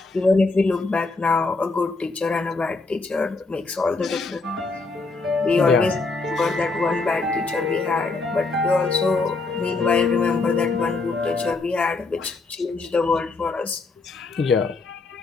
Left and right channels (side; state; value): right; quieter; 3.7 dB